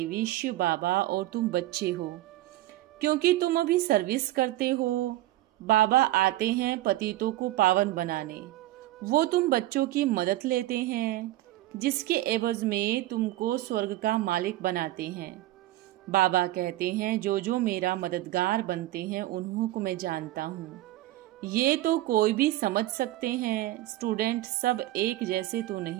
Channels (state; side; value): quieter; left; 16.2 dB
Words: शिव बाबा और तुम बच्चे हो, क्योंकि तुम अभी सर्विस करते हो। बाबा आते हैं पतितों को पावन बनाने, वो तुम बच्चों की मदद लेते हैं, जिसके एवज में तुमको स्वर्ग का मालिक बनाते हैं। बाबा कहते हैं जो जो मेरा मददगार बनते हैं उन्हों को मैं जानता हूँ। ये तो कोई भी समझ सकते हैं, स्टूडेंट सब एक जैसे तो